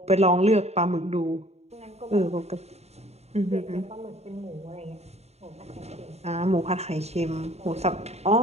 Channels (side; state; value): left; late; 0.31 ms